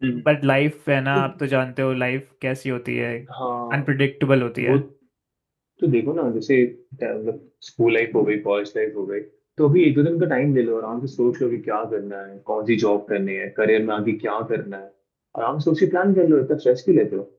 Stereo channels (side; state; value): both; identical; correlation 1.00